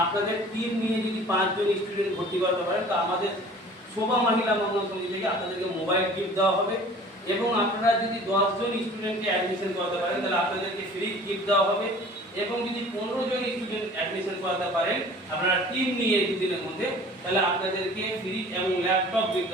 আপনাদের টিম নিয়ে যদি 5 জন স্টুডেন্ট ভর্তি করাতে পারেন, তো আমাদের শোভা মহিলা মঙ্গল সমিতি থেকে আপনাদেরকে মোবাইল গিফট দেওয়া হবে। এবং আপনারা যদি 10 জন স্টুডেন্টকে অ্যাডমিশন করাতে পারেন, তাহলে আপনাদেরকে ফ্রি গিফট দেওয়া হবে। এবং যদি 15 জন স্টুডেন্ট অ্যাডমিশন করাতে পারেন আপনারা টিম নিয়ে 2 দিনের মধ্যে, তাহলে আপনাদেরকে ফ্রি এবং ল্যাপটপ গিফট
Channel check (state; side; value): normal; both; correlation 0.46